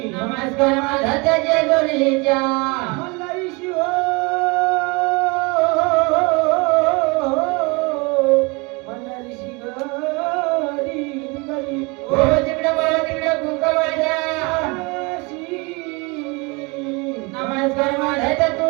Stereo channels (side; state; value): left; quieter; 27.3 dB